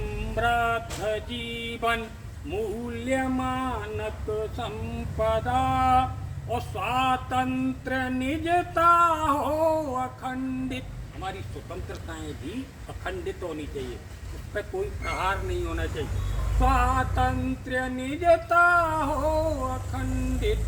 जीवन मूल्य मानक संपदा। और स्वातंत्र निजता हो अखंडित। हमारी स्वतंत्रताएं भी अखंडित होनी चाहिए, उस पर कोई प्रहार नहीं होना चाहिए। स्वातंत्र्य निजता हो अखंडित,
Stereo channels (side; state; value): both; identical; correlation 1.00